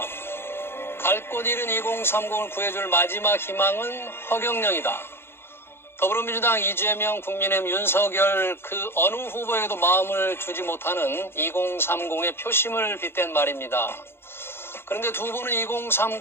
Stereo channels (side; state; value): right; late; 0.11 ms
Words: 갈 곳 잃은 2030을 구해줄 마지막 희망은 허경영이다. 더불어민주당 이재명, 국민의힘 윤석열 그 어느 후보에도 마음을 주지 못하는 2030의 표심을 빗댄 말입니다. 그런데 두 분은